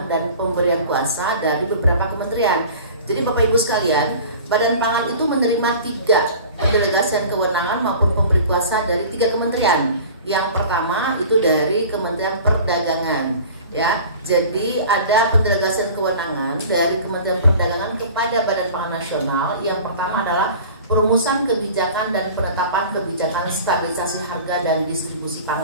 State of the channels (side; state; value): both; inverted; correlation -0.42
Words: dan pemberian kuasa dari beberapa kementerian. Jadi Bapak Ibu sekalian, Badan Pangan itu menerima 3 pendelegasian kewenangan maupun pemberi kuasa dari 3 kementerian. Yang pertama itu dari Kementerian Perdagangan ya. Jadi ada pendelegasian kewenangan dari Kementerian Perdagangan kepada Badan Pangan Nasional. Yang pertama adalah perumusan kebijakan dan penetapan kebijakan stabilisasi harga dan distribusi